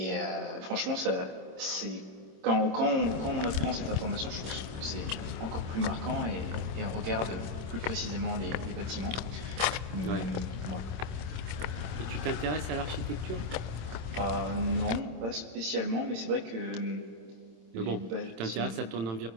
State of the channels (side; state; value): left; late; 26 ms